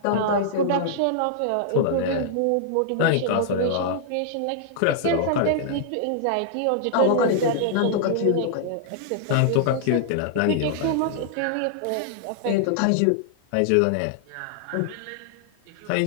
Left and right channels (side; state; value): both; different; correlation -0.01